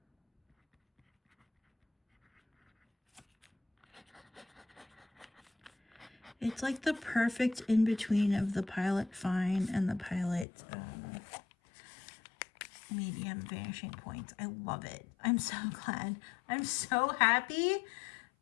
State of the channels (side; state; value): right; drops out; at 10.5 s